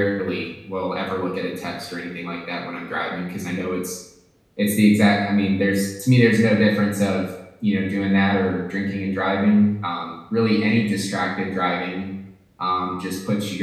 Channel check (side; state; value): both; identical; correlation 1.00